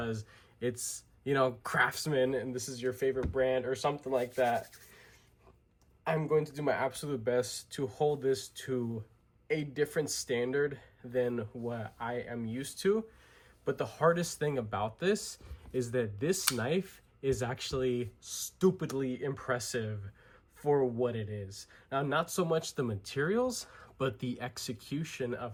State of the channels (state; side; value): identical; both; correlation 1.00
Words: it's, Craftsman and this is your favorite brand or something like that, I'm going to do my absolute best to hold this to a different standard than what I am used to. But the hardest thing about this is that this knife is actually stupidly impressive for what it is. Now, not so much the materials, but the execution of